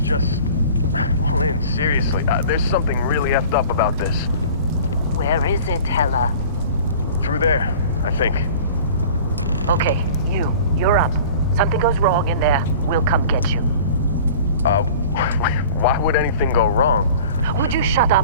Lynn, seriously, there's something really effed up about this. Where is it, Hella? Through there, I think. Okay, you're up. Something goes wrong in there, we'll come get you. Why would anything go wrong? Would you shut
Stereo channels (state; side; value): inverted; both; correlation -0.43